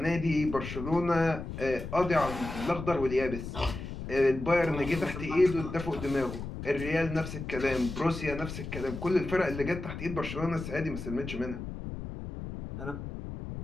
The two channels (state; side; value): noise; left; rumble, 8 dB below the sound